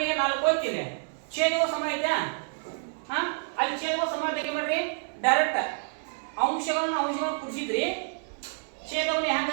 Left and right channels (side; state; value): left; silent; 59 dB below the other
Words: 4 ಹೋಗ್ತಿದೆ, ಛೇದವು ಸಮ ಐತೆ. ಅಲ್ಲಿ ಛೇದವು ಸಮ ತೆಗೆ ಮಾಡ್ರಿ, ಡೈರೆಕ್ಟ್ ಅಂಶಗಳನ್ನು ಕುಡಿಸಿದ್ರಿ, ಛೇದವನ್ನು